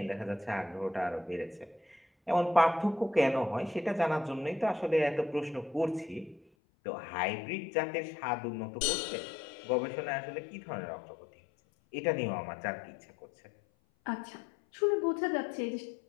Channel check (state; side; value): drops out; right; at 6.5 s